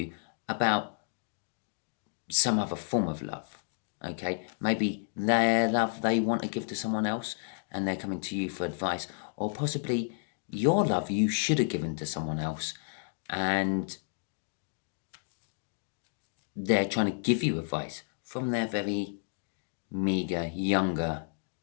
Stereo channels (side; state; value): right; silent; digital silence